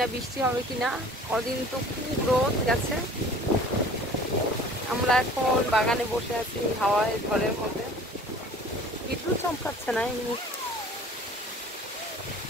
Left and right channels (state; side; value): normal; both; correlation 0.47